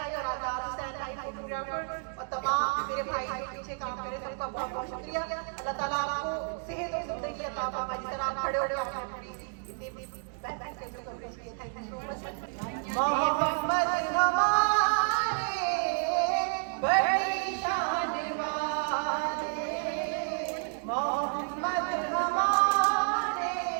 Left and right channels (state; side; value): silent; left; 57 dB below the other